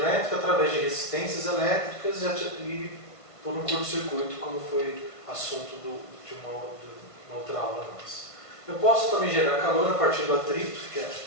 através de resistências elétricas e por um curto-circuito, como foi assunto de uma outra aula nossa. Eu posso também gerar calor a partir do atrito, que é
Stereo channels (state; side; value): late; right; 1.5 ms